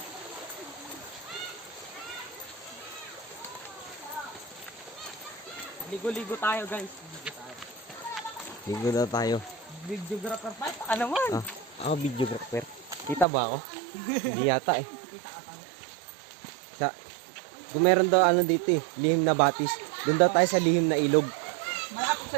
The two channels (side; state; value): left; drops out; at 13.2 s